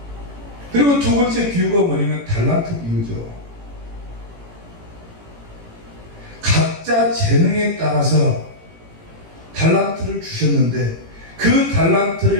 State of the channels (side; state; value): left; late; 18 ms